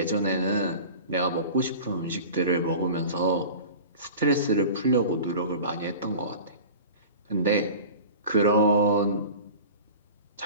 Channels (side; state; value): both; inverted; correlation -0.37